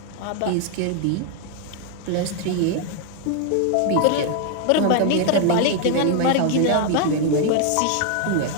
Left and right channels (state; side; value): different; both; correlation 0.00